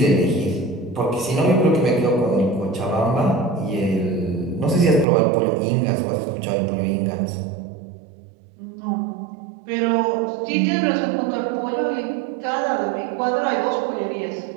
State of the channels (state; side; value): drops out; left; at 5.1 s